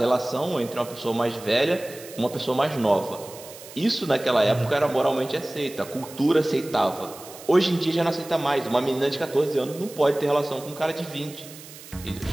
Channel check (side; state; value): right; noise; hiss, 17 dB below the sound